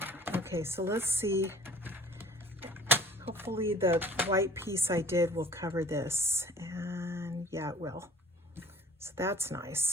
Okay, so let's see. Hopefully the white piece I did will cover this. And yeah, it will. So that's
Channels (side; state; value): both; normal; correlation 0.48